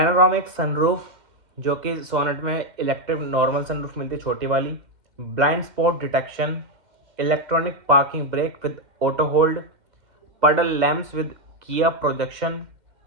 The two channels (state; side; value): late; left; 2.1 ms